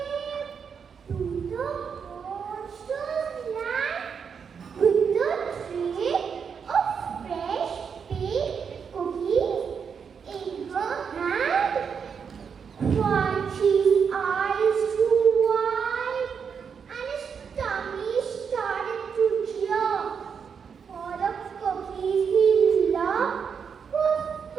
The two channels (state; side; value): quieter; left; 6.6 dB